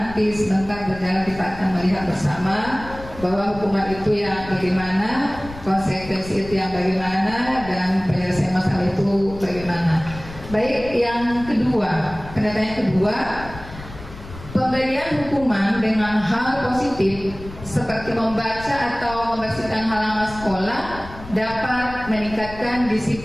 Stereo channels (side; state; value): left; noise; rumble, 15 dB below the sound